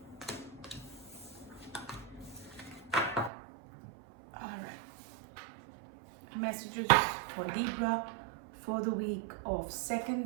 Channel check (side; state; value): left; drops out; at 3.3 s